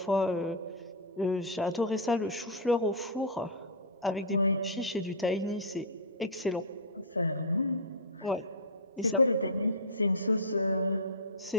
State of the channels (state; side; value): normal; both; correlation -0.10